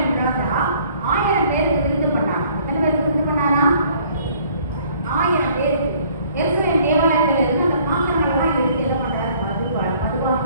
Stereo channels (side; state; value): both; inverted; correlation -0.58